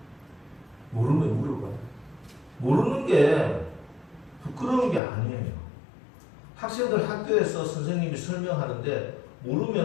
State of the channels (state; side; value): drops out; right; at 5.0 s